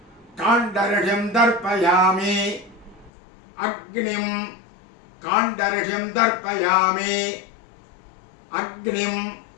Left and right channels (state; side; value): drops out; right; at 3.1 s